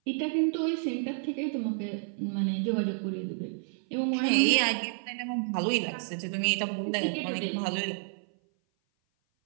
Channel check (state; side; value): silent; left; 56 dB below the other